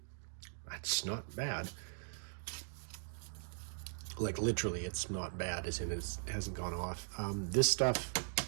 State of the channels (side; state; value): left; silent; digital silence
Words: That's not bad. Like literally, it's not bad, as in it hasn't gone off. This stuff,